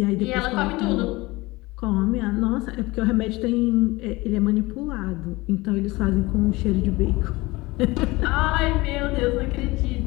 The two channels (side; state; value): right; quieter; 21.6 dB